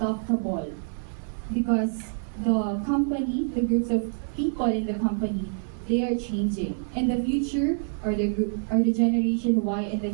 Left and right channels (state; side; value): silent; left; digital silence